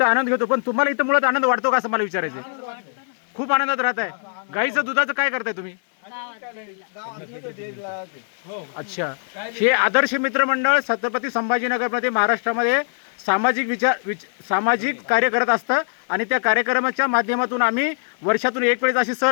आनंद घेतो, पण तुम्हाला इथं मुळात आनंद वाटतो का असं मला विचारायचं आहे. खूप आनंदात राहत आहे. गाईचं दुधाचं काय करताय तुम्ही? अच्छा. हे आदर्श मित्र मंडळ छत्रपती संभाजीनगरमध्ये महाराष्ट्रामध्ये सामाजिक कार्य करत असतं आणि त्या कार्यक्रमाच्या माध्यमातून आम्ही वर्षातून 1 वेळेस अशी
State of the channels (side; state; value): right; silent; 62 dB below the other